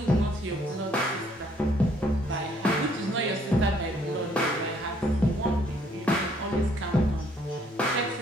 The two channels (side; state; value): both; normal; correlation 0.65